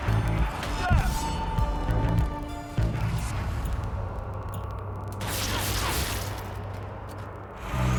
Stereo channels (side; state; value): both; identical; correlation 1.00